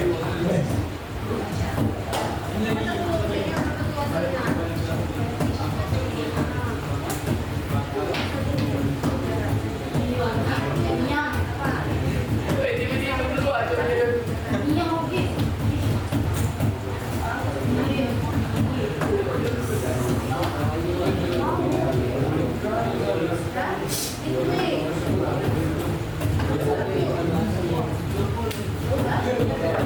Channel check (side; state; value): both; identical; correlation 1.00